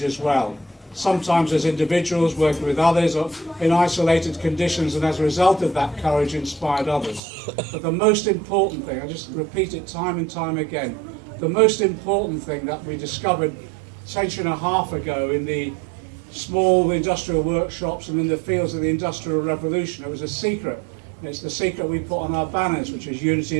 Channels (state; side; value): drops out; left; at 7.2 s